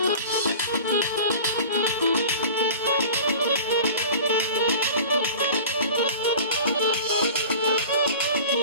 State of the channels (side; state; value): both; inverted; correlation -0.38